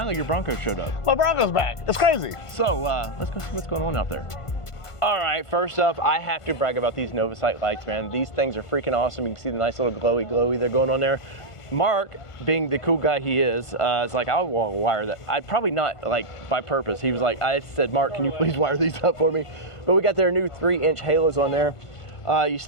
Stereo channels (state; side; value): late; right; 1.5 ms